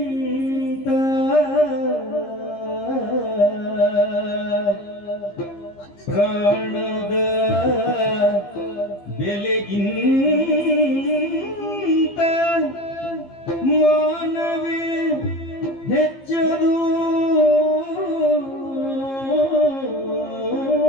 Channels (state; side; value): late; right; 15 ms